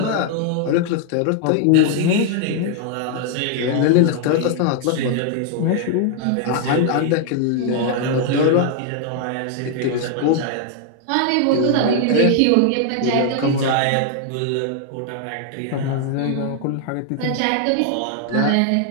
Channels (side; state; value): both; different; correlation 0.00